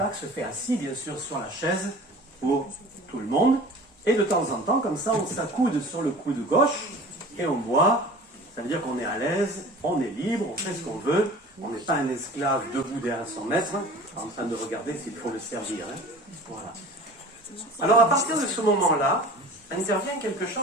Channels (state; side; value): normal; both; correlation 0.41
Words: se fait assis, bien sûr, sur la chaise, pour tout le monde, et de temps en temps, comme ça, on s'accoude sur le coude gauche, et on boit, ça veut dire qu'on est à l'aise, on est libre, on fait ce qu'on veut, on n'est pas un esclave debout derrière son maître, en train de regarder s'il faut le servir. Hein. Voilà. Alors, à partir de ce moment-là, intervient quelque